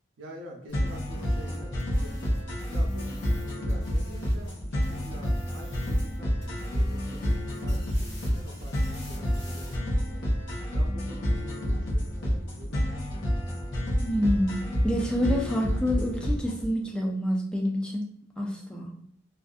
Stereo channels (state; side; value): normal; both; correlation 0.92